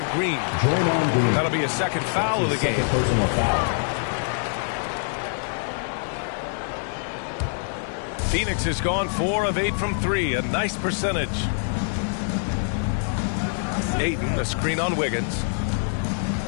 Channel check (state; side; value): silent; right; digital silence